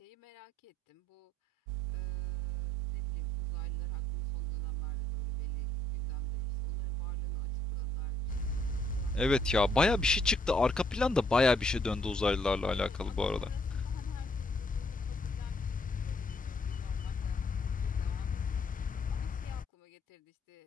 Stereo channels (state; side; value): normal; both; correlation 0.67